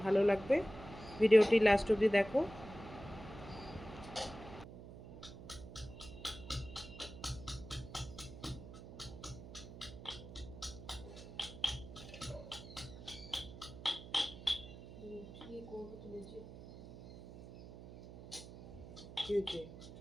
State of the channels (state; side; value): noise; right; hum, 14 dB below the sound